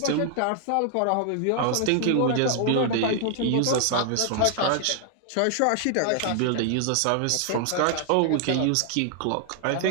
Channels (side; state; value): both; different; correlation 0.00